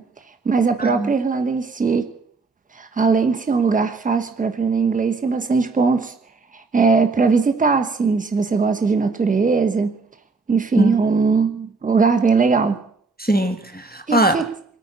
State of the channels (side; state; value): left; quieter; 4.0 dB